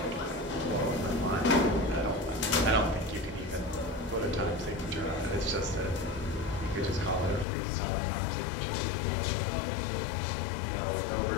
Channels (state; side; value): drops out; right; at 7.5 s